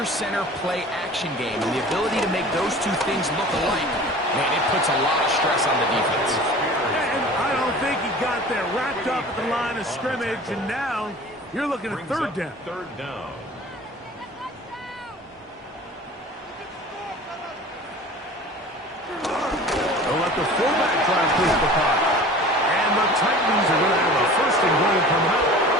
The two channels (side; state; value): both; normal; correlation 0.42